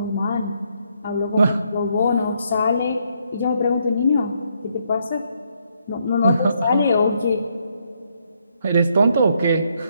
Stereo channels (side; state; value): both; inverted; correlation -0.74